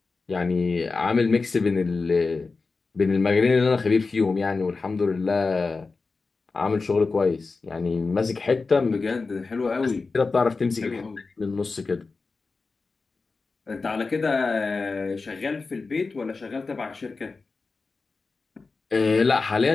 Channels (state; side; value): quieter; right; 4.1 dB